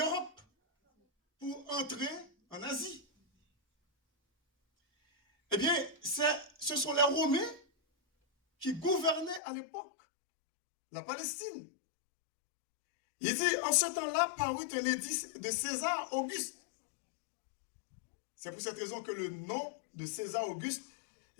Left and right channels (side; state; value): right; drops out; at 9.4 s